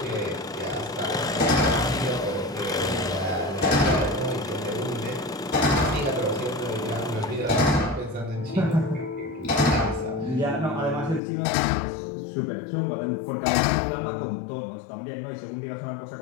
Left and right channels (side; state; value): right; drops out; at 11.2 s